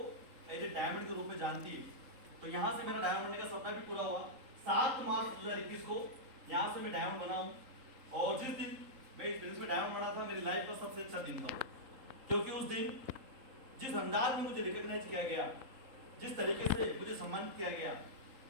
एज ए डायमंड के रूप में जानती है। तो यहाँ से मेरा डायमंड बनने का सपना भी पूरा हुआ। 7 मार्च 2021 को यहाँ से मैं डायमंड बना हूँ, और जिस दिन मैं इस बिजनेस में डायमंड बना था मेरी लाइफ का सबसे अच्छा दिन था, क्योंकि उस दिन जिस अंदाज में मुझे रिकॉग्नाइज किया गया, जिस तरीके से मुझे सम्मानित किया गया,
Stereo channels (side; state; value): left; late; 3.8 ms